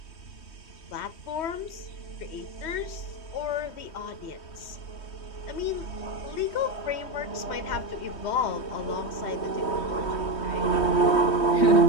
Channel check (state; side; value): late; right; 3.2 ms